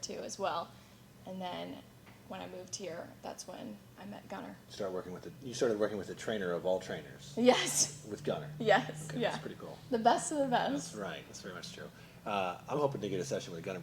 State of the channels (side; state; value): both; identical; correlation 1.00